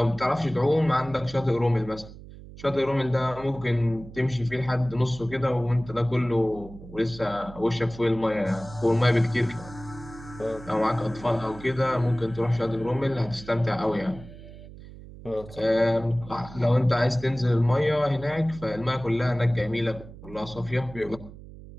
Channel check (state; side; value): noise; right; hum, 16 dB below the sound